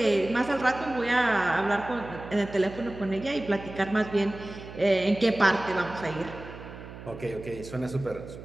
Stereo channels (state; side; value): noise; right; hum, 14 dB below the sound